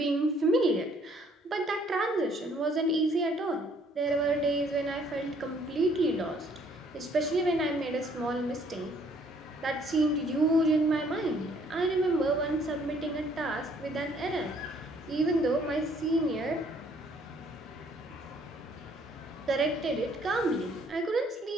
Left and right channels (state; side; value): normal; both; correlation 0.63